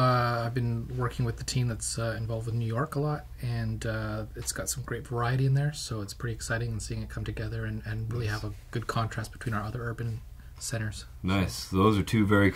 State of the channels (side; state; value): both; identical; correlation 1.00